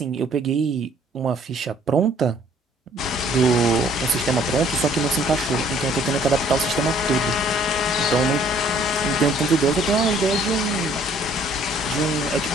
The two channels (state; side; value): normal; both; correlation 0.59